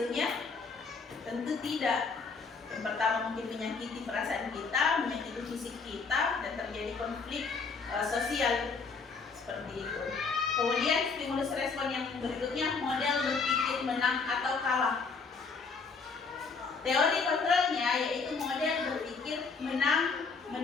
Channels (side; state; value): right; quieter; 4.8 dB